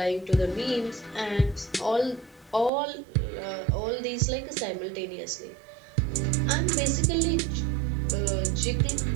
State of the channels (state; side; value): drops out; left; at 2.7 s